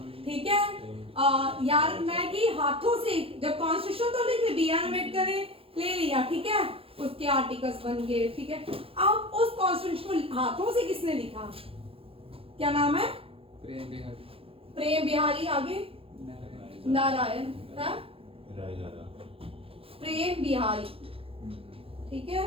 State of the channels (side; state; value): left; late; 0.27 ms